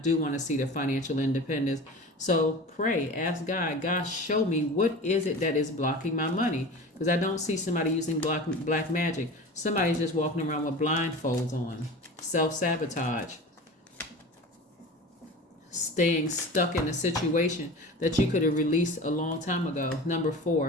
want to see the financial independence. So pray, ask God, show me, what is it that is blocking my money? Because I don't see somebody using black magic. Somebody's just walking around with blindfolds on. Self-sabotage. Staying stuck in a situation that you could have released a long time ago. Number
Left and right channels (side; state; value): both; normal; correlation 0.35